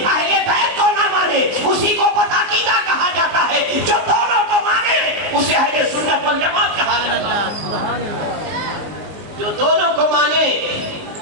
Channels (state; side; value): late; left; 19 ms